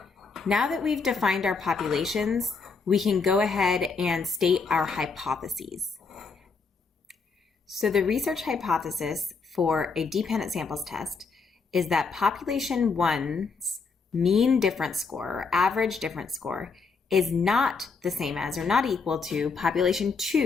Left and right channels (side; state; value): right; quieter; 4.7 dB